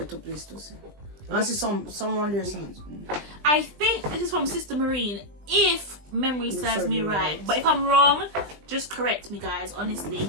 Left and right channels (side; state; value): left; late; 20 ms